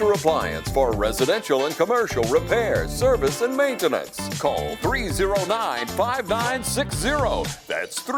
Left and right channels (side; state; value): both; identical; correlation 1.00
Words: Appliance for residential and commercial repair, service, and maintenance. Call 309-5960. That's